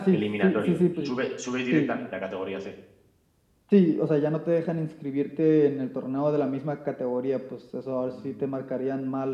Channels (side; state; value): both; identical; correlation 1.00